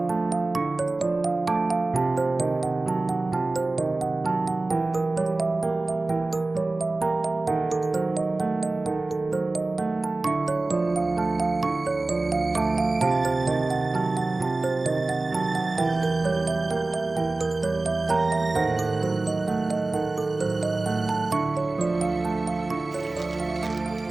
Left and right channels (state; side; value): quieter; left; 3.1 dB